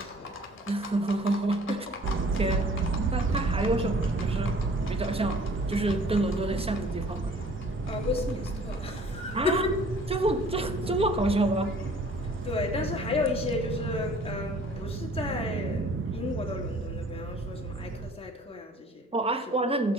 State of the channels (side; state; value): both; normal; correlation 0.52